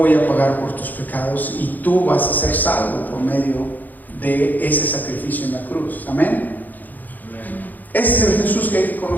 a pagar por tus pecados y tú vas a ser salvo por medio de ese sacrificio en la cruz. Amén. Ese es el Jesús que hay que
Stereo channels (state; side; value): late; right; 0.084 ms